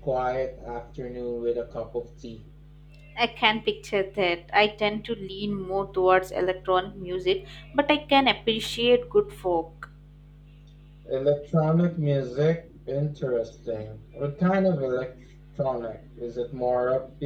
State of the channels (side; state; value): both; identical; correlation 1.00